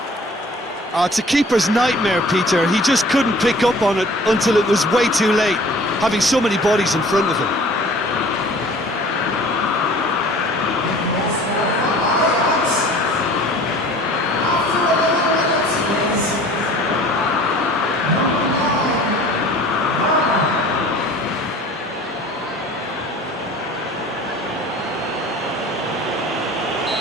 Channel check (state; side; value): normal; both; correlation 0.47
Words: It's a keeper's nightmare, Peter. He just couldn't pick up on it until it was way too late, having so many bodies in front of him.